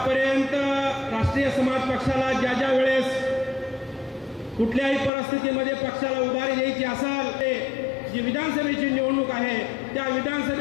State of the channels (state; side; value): drops out; right; at 5.1 s